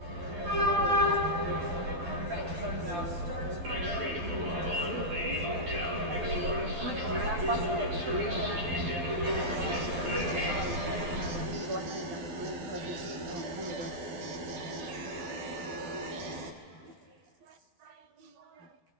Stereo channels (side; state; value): left; late; 12 ms